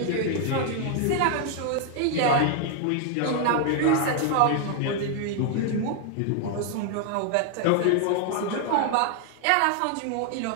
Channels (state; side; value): different; both; correlation 0.00